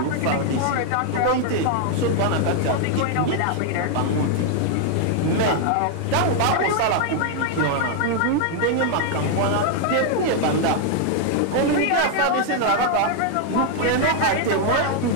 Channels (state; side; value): different; both; correlation 0.00